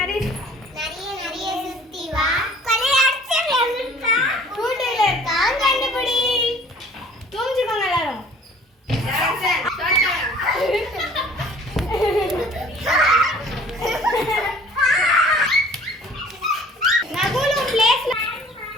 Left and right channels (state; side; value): normal; both; correlation 0.51